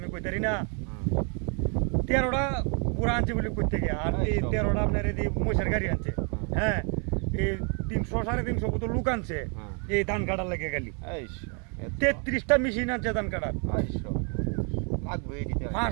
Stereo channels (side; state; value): left; quieter; 37.6 dB